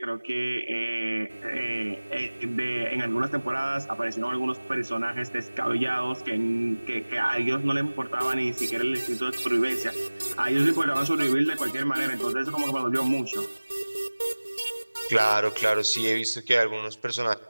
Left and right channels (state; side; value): inverted; both; correlation -1.00